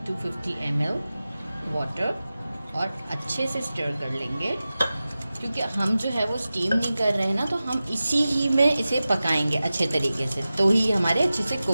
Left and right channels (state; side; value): inverted; both; correlation -0.95